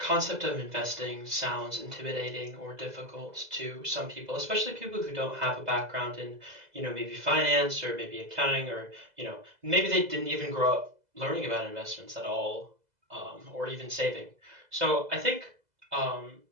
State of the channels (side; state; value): left; late; 2.0 ms